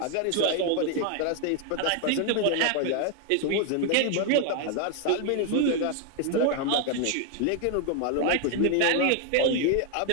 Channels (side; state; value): both; different; correlation 0.01